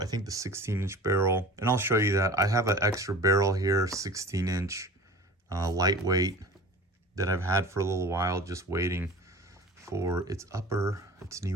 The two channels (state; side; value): normal; both; correlation 0.39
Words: think, the 16-inch barrel. And I'll show you that. I have an extra barrel here, 16-inch. Lightweight that I've had for a little while, just waiting for its